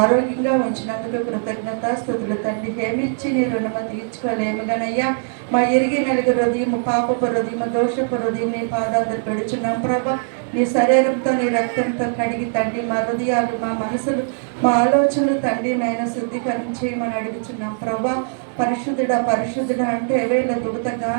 ఉంచినందుకు కృతజ్ఞత స్తుతులు తండ్రి ఏమిచ్చి నీ రుణమ తీర్చుకోలేము గనయ్యా. మా ఎరిగి నలుగు హృదయం పాపపు హృదయం దోషపు హృదయం నీ పాదాలు పెడుచున్నాం ప్రభా. నీ శరీరంతో నీ రక్తంతో కడిగి తండ్రి మా హృదయాలు మా మనసులు మా ఆలోచనలు తండ్రి నైనా శుద్ధీకరించి మనం అడుగుచున్నాం ప్రభా. పరిశుద్ధుడా పరిశుద్ధుడా అంటే వేళ దుగుత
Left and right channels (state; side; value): silent; left; 65 dB below the other